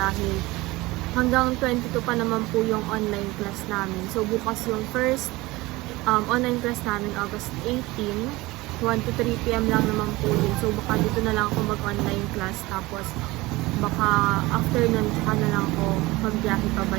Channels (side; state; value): left; quieter; 20.7 dB